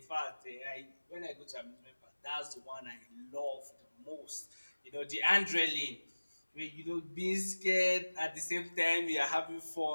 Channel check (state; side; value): inverted; both; correlation -1.00